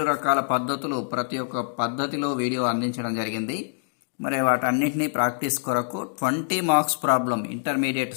రకాల పద్ధతులు ప్రతి ఒక్క పద్ధతిలో వీడియో అందించడం జరిగింది. మరి వాటన్నిటినీ ప్రాక్టీస్ కొరకు 20 marks problem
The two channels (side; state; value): right; silent; digital silence